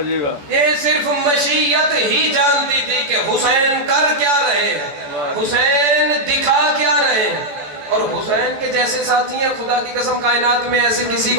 یہ صرف مشیت ہی جانتی تھی کہ حسین کر کیا رہے ہیں, حسین دکھا کیا رہے ہیں. اور حسین کے جیسے ساتھی ہیں خدا کی قسم کائنات میں ایسے کسی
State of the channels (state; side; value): late; left; 14 ms